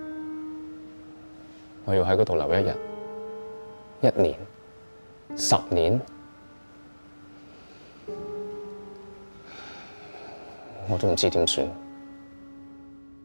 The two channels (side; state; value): both; inverted; correlation -1.00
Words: 我要喺嗰度留1日、1年、10年，我都唔知點算。